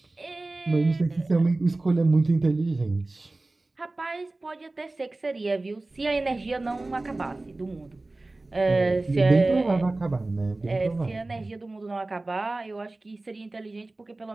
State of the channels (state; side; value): quieter; left; 3.0 dB